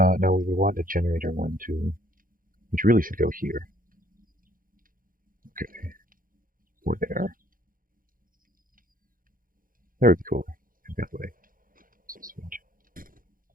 we want a generator 1, 2, which really should go here. Okay, or there. That would be cool. That way.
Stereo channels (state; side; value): late; left; 0.40 ms